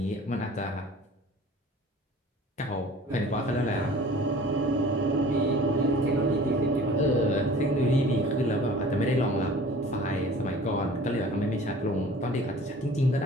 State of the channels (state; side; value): normal; both; correlation 0.45